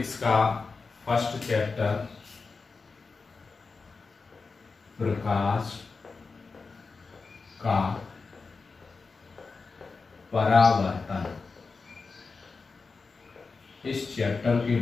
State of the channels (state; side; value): quieter; right; 4.4 dB